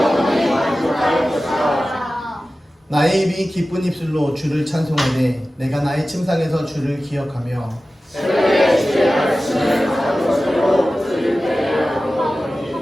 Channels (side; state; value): both; normal; correlation 0.95